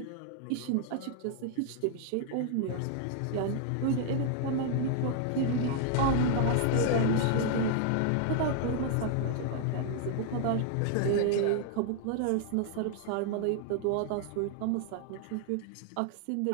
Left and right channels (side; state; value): both; different; correlation 0.00